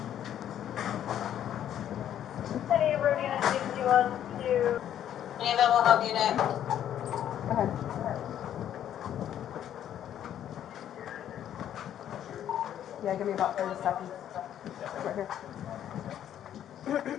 Any road unit 61 to... Any available help unit? Go ahead. Yeah, give me about 30 seconds. Right here.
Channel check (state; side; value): quieter; right; 10.6 dB